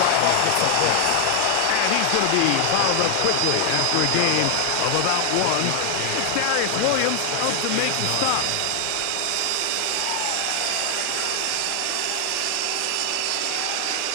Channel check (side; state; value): both; different; correlation 0.00